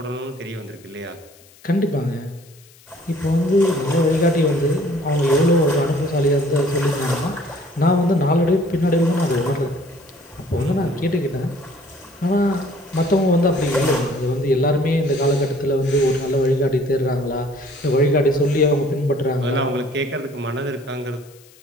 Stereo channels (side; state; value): left; noise; hiss, 27 dB below the sound